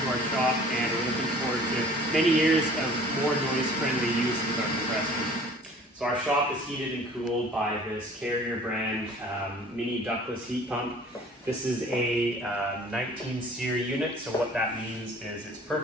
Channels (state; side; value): normal; both; correlation 0.49